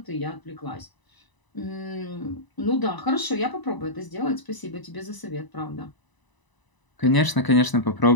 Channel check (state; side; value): late; right; 1.0 ms